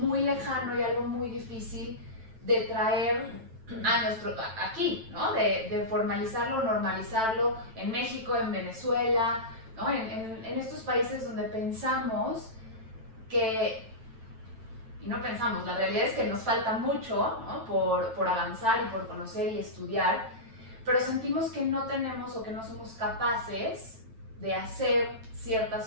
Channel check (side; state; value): left; late; 9.0 ms